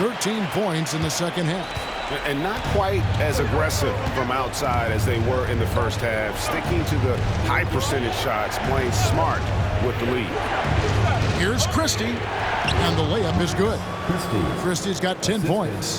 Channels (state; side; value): identical; both; correlation 1.00